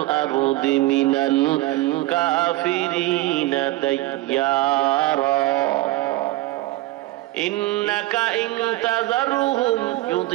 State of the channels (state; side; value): quieter; left; 18.0 dB